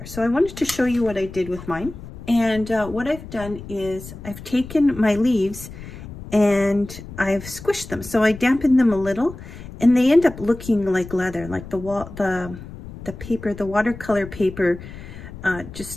So I wanted to show you what I did with mine. And what I've done is I've taken my leaves and I've squished them. So I dampened them a little, and they end up looking like leather, like the paper, the watercolor paper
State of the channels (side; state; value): left; noise; rumble, 14 dB below the sound